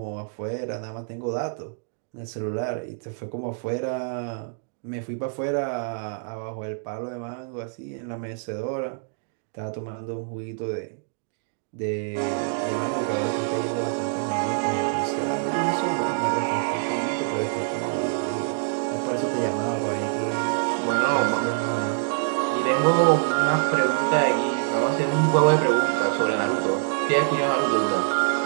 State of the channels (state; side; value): silent; left; digital silence